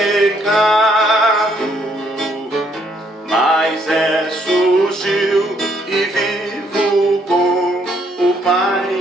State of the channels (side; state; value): both; normal; correlation 0.69